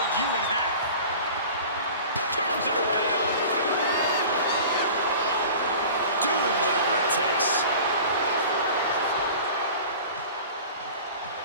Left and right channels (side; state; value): both; inverted; correlation -0.40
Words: you in half. Turns it around. Doing whatever it takes.